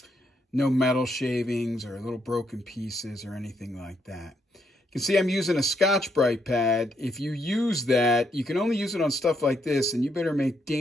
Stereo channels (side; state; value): both; normal; correlation 0.76